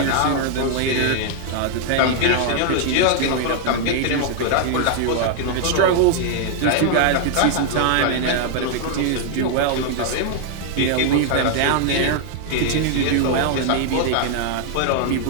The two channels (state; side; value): different; both; correlation 0.00